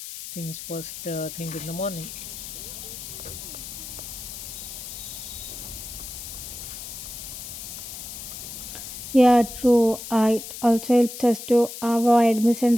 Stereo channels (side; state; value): left; noise; hiss, 10 dB below the sound